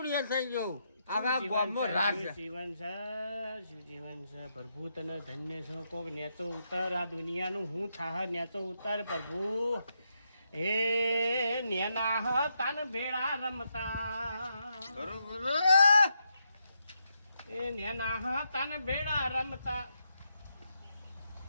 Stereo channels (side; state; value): both; inverted; correlation -0.82